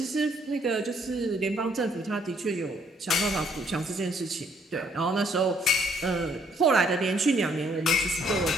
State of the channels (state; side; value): normal; both; correlation 0.66